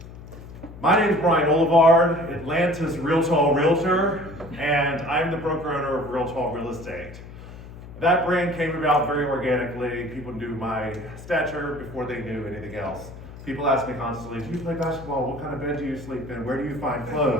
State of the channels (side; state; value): left; noise; hum, 15 dB below the sound